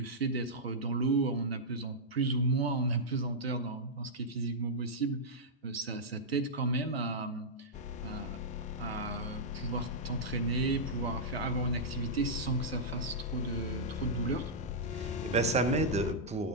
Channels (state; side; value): normal; both; correlation -0.09